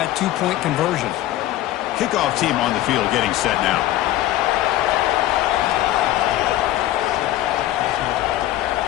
2-point conversion. Kickoff team on the field getting set now.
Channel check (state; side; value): quieter; right; 14.5 dB